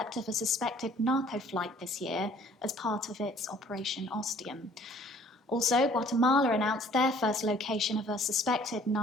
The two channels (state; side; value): normal; both; correlation 0.55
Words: of a suspected narco flight this year as part of its Operation Ostium. Also, Guatemala announced their first location of a suspected